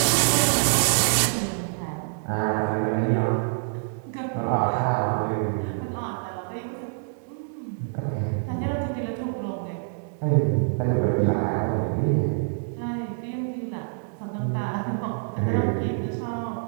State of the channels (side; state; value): left; silent; digital silence